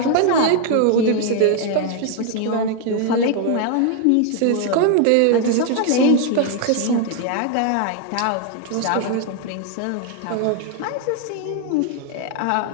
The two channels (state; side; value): different; both; correlation 0.00